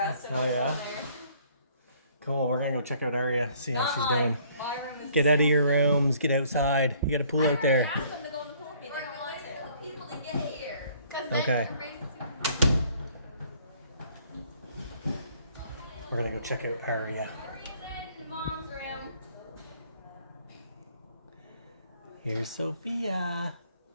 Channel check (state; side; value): inverted; both; correlation -0.60